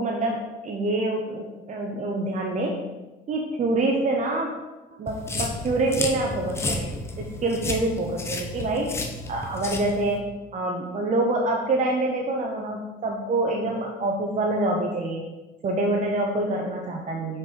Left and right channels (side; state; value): both; normal; correlation 0.28